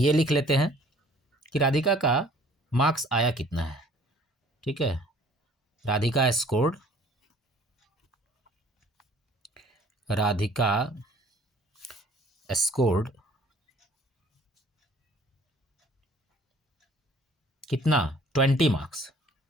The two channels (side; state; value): both; normal; correlation 0.54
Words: लिख लेते हैं कि राधिका का मार्क्स आया कितना है। ठीक है, राधिका स्कोर्ड कितना? 20 marks.